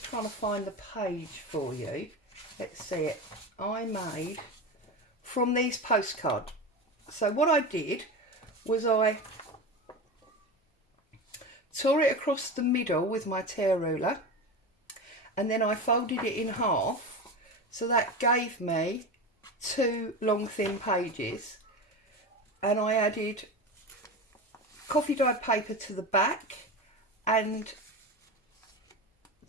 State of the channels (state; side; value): normal; both; correlation 0.25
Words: trying to find the page for you. Let's see it. I made from these postcards. So what I did was I tore it across the middle with my tear ruler, and then I folded it in half, so that gave me 2 long thin pages, and I added coffee dyed paper to the back, and